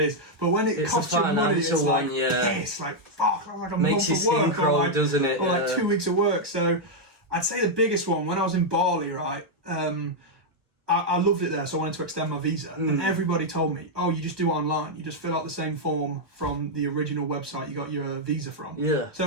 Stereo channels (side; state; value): left; late; 1.2 ms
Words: But when it costs you money, it's like, piss, like, fuck, like a makes you skin crawl, doesn't it? Or like 2 weeks of work. So I'd say the biggest one, when I was in Bali, right? I I loved it there, so I wanted to extend my visa. And everybody told me, oh, you just do it online. You just fill out the same form from the original website you got your visa from. Yeah.